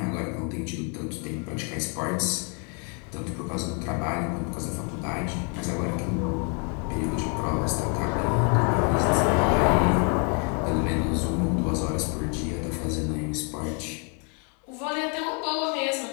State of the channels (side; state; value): right; quieter; 37.9 dB